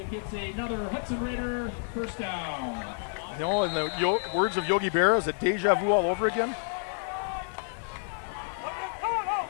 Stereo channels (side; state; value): right; silent; 58 dB below the other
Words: You know, in the words of Yogi Berra, is it deja vu all over again?